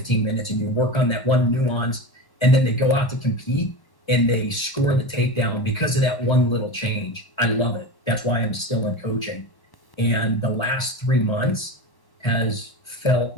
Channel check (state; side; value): late; right; 1.1 ms